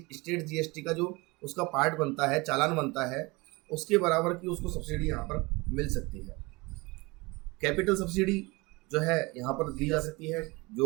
स्टेट जीएसटी का जो उसका पार्ट बनता है, चालान बनता है, उसके बराबर की उसको सब्सिडी यहाँ पर मिल सकती है। कैपिटल सब्सिडी जो है यहाँ पर दी जा सकती है।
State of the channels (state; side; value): quieter; left; 24.5 dB